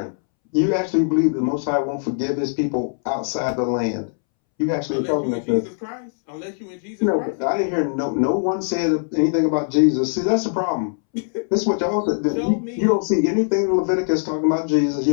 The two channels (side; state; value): right; silent; 65 dB below the other